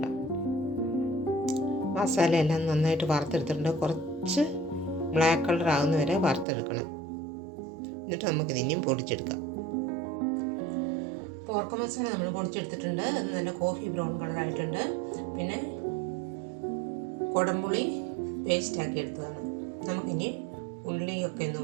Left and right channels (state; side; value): drops out; left; at 6.5 s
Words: മസാല എല്ലാം നന്നായിട്ട് വറുത്തെടുത്തിട്ടുണ്ട്. കുറച്ച് ബ്ലാക്ക് കളർ ആകുന്ന വരെ വറുത്തെടുക്കണം. എന്നിട്ട് നമുക്കിത് ഇനിയും പൊടിച്ചെടുക്കാം. പോർക്ക് മസാല നമ്മൾ പൊടിച്ചെടുത്തിട്ടുണ്ട്. അത് നല്ല കോഫി ബ്രൗൺ കളറായിട്ടുണ്ട്. പിന്നെ കുടംപുളി പേസ്റ്റാക്കി എടുത്തതാണ്. നമുക്കിനി ഉള്ളിയൊക്കെ ഒന്ന്